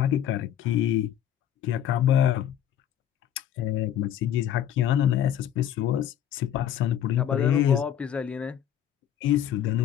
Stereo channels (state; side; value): quieter; right; 10.4 dB